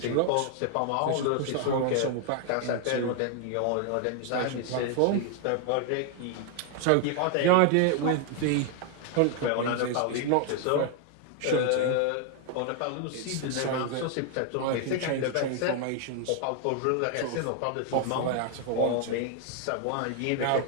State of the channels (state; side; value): different; both; correlation 0.00